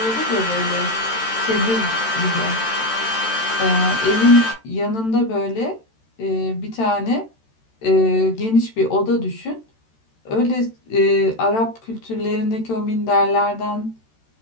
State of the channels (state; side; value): late; right; 13 ms